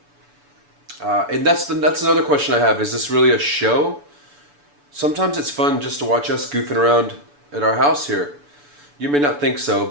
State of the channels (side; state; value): left; late; 6.9 ms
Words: And that's another question I have. Is this really a show? Sometimes it's fun just to watch us goofing around at our house here. You may not think so,